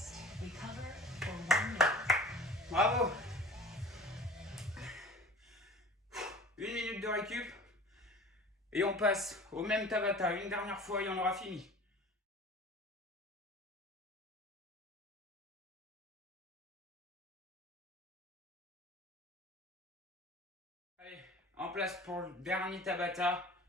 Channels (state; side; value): normal; both; correlation 0.42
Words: Recover for 1 minute. Bravo. Une minute de récup. Et on passe au même Tabata une dernière fois et on aura fini. Allez, en place pour le dernier Tabata